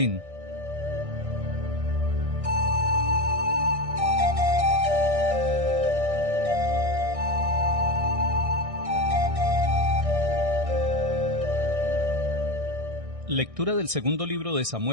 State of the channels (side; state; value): left; late; 1.6 ms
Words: Lectura del segundo libro de